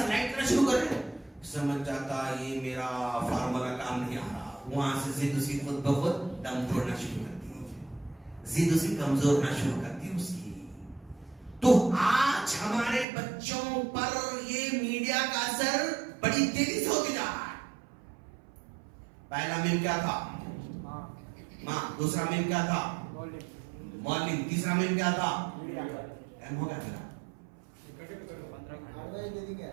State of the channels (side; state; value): left; drops out; at 13.1 s